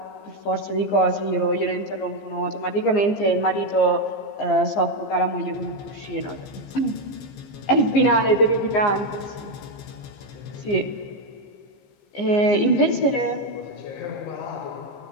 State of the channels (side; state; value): right; late; 15 ms